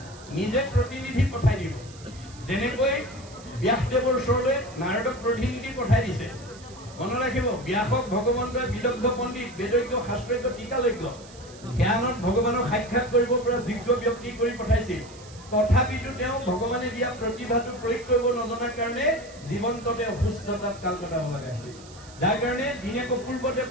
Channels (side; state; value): right; noise; hiss, 21 dB below the sound